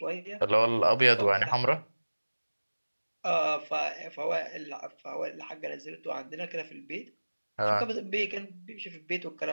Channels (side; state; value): both; inverted; correlation -1.00